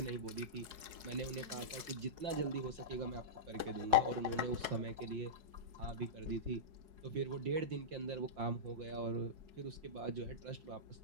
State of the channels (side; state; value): left; late; 4.7 ms